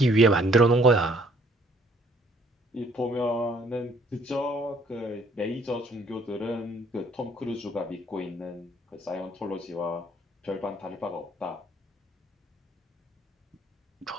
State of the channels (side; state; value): both; normal; correlation 0.62